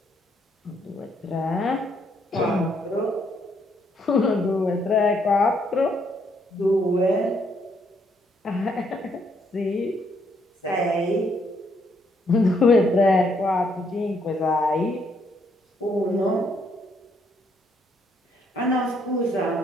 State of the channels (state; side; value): normal; both; correlation 0.72